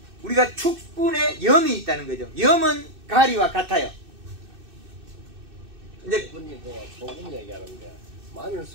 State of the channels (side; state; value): left; late; 2.6 ms